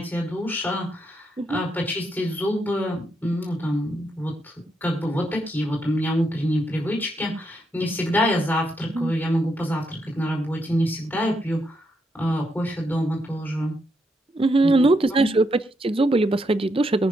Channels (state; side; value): normal; both; correlation 0.80